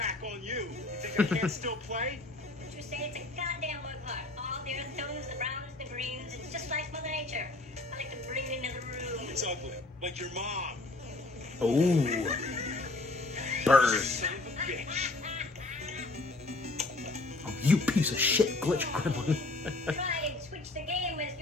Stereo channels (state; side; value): quieter; right; 3.1 dB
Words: on you. You think I can't still play? Did you say it's a goddamn work of art? All the earth tones, the browns, the greens. It's just like Mother Nature. I like to bring it into the room. It's ugly. Like your mom. Ooh. Bird. Son of a bitch. Oh, you piece of shit, glitch gremlin. Try and switch the game as